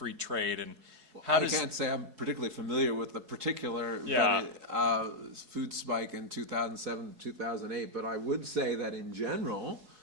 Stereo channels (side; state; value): left; late; 4.7 ms